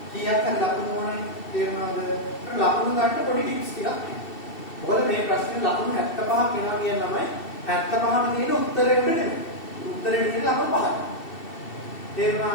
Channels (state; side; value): late; right; 2.7 ms